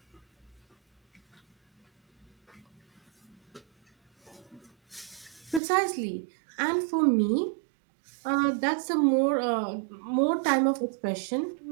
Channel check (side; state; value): left; drops out; at 5.6 s